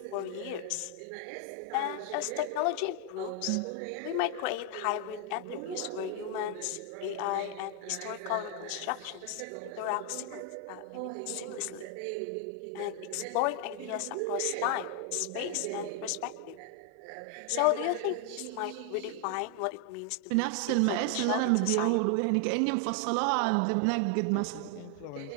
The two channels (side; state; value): both; different; correlation 0.00